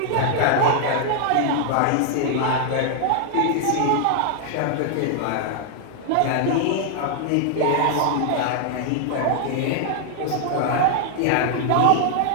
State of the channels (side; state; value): both; different; correlation 0.00